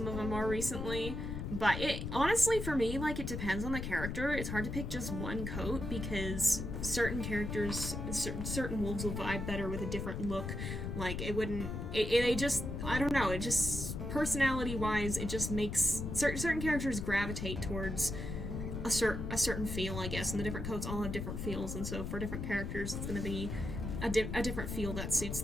of them more recently. But it honestly, for me, like, it depends on the character. It's hard to pick just one coat because certain characters, certain wolves will vibe better with a different look. Like, it wouldn't. They just, I don't know. It just, personality-wise, it just makes certain characters gravitate towards a certain feel, I guess, and the different coats all have different feels, and so for different characters, it's going to be a different feel that suits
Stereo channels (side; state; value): left; noise; rumble, 4 dB below the sound